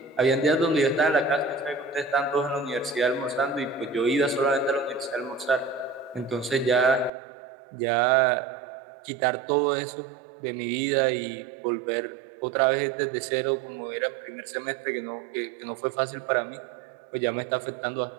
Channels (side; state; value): left; drops out; at 7.1 s